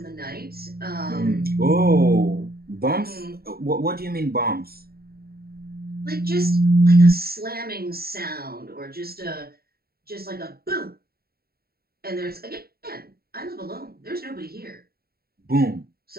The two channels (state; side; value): late; left; 0.45 ms